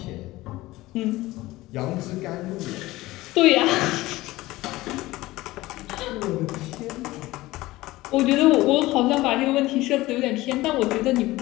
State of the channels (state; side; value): quieter; right; 18.4 dB